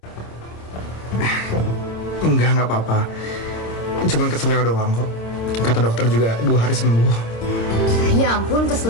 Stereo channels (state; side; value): late; right; 26 ms